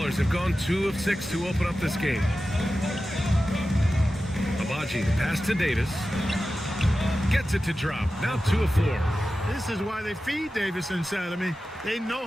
have gone 2 of 6 to open up this game. Abaji, the pass to Davis. Gets it to drop. Now 2 of 4. This is why they feed Davis inside. I mean, they know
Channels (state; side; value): normal; both; correlation 0.94